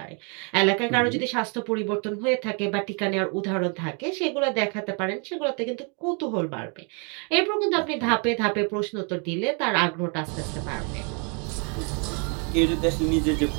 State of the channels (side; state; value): left; quieter; 37.0 dB